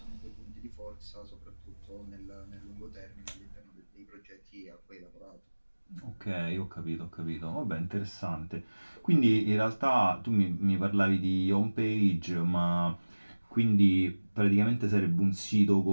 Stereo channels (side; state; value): both; inverted; correlation -1.00